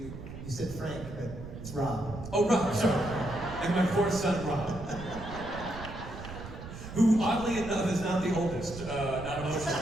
You said Frank, but it's Rob. Oh, Rob, sorry. And my 4th son, Rob. Who, oddly enough, is not the oldest, not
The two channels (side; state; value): right; noise; rumble, 11 dB below the sound